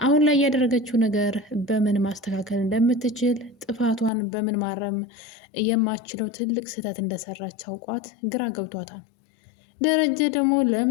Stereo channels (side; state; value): right; drops out; at 4.1 s